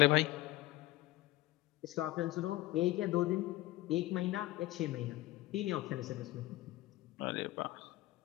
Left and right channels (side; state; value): right; quieter; 17.8 dB